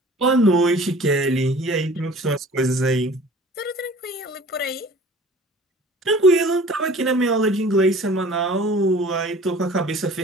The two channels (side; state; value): both; normal; correlation 0.46